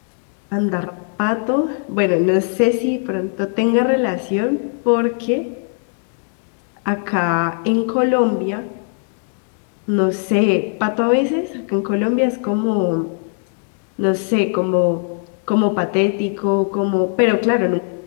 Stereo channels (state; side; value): silent; right; 57 dB below the other